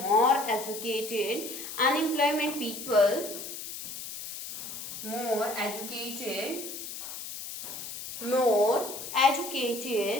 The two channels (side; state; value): left; noise; hiss, 9 dB below the sound